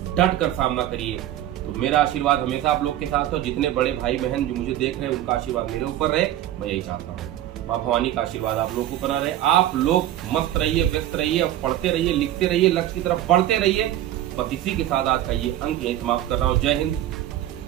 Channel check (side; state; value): left; quieter; 12.8 dB